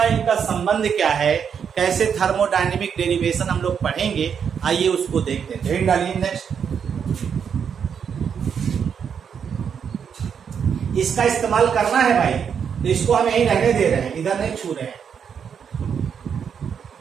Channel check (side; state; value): left; quieter; 7.3 dB